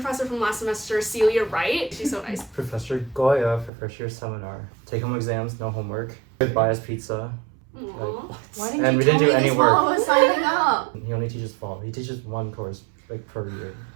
from last semester, Celia Wright, she's so nice. Professor Goya for first year seminar. Take home exams, no homework. Buy us pizza. Aww. Why And we didn't do any work. while I was signing up? He only teaches fall. He teaches one course like per year.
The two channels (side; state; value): left; drops out; at 3.7 s